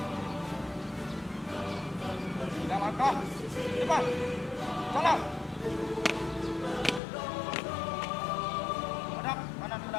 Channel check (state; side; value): drops out; right; at 7.0 s